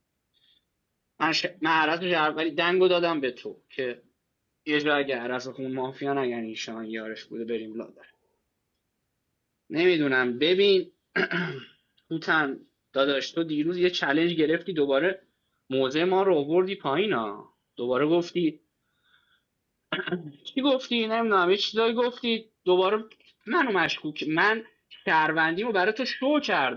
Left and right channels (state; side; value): identical; both; correlation 1.00